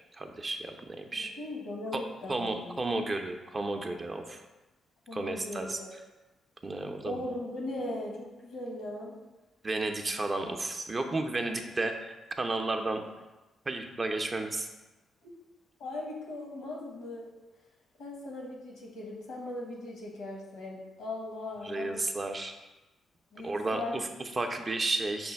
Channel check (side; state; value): both; normal; correlation 0.87